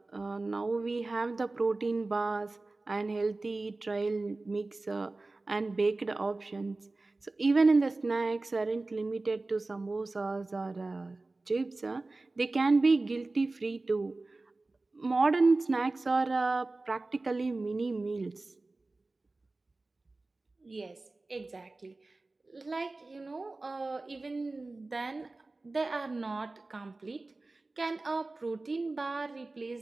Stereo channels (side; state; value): left; quieter; 3.2 dB